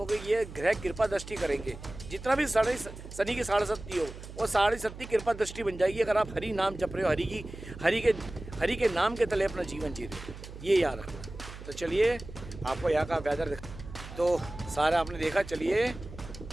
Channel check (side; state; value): right; noise; hum, 13 dB below the sound